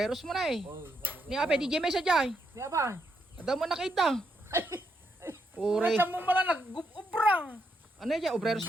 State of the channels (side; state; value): both; normal; correlation 0.79